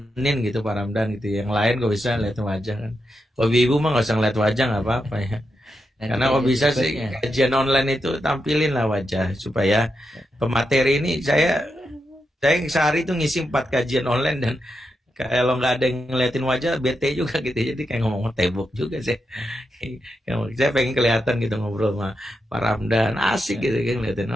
gitu Pak Ramdan gitu. Yang lain kok bisa lihat wajah kan. Kalau ibu mah nggak usah ngeliat wajah, nggak apa-apa ya. Karena kalau bisa sih kajian online itu tampilin lah wajah supaya pemateri ini saya sehari itu ngisi 4 kajian online dan Kalau nggak ada yang ngeliatin wajah bete juga gitu, jadi kayak ngomong tembok juga sih. Saya pengen kelihatan gitu ngobrol sama Pak Ramdan, asik gitu kan ngeliatin,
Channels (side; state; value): both; normal; correlation 0.86